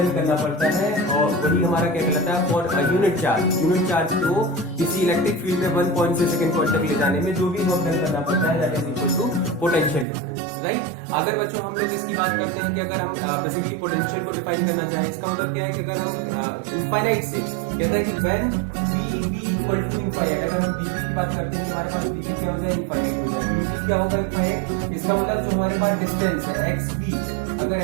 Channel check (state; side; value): drops out; left; at 10.1 s